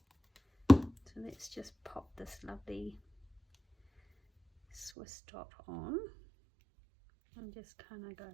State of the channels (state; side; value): drops out; left; at 4.9 s